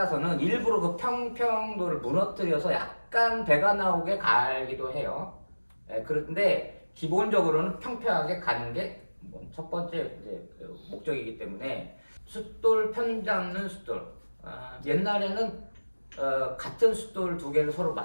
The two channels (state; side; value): inverted; both; correlation -1.00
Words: 일부러 그 평평도를 무너뜨려서 약간 배가 나오게 갈기도 해요. 그런데 기본적으로는 평평하게 가는 게 첫 번째 이제 목적이기 때문에 숫돌 편 잡는 숫돌. 옛날에는 같은 숫돌 두 개를 서로